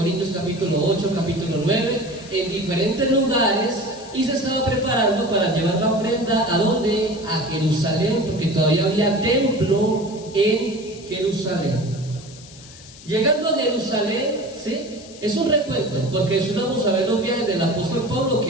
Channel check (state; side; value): noise; left; hiss, 19 dB below the sound